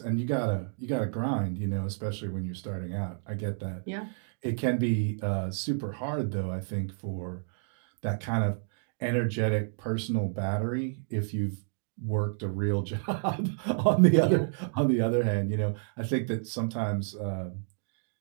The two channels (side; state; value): left; silent; digital silence